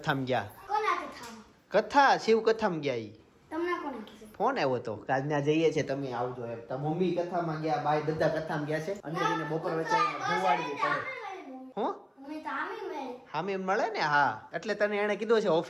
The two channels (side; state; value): both; identical; correlation 1.00